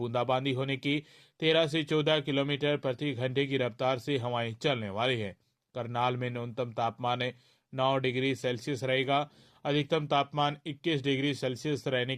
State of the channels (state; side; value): identical; both; correlation 1.00